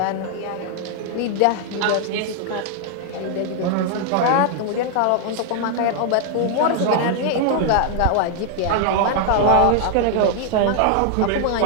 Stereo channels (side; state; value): both; different; correlation 0.00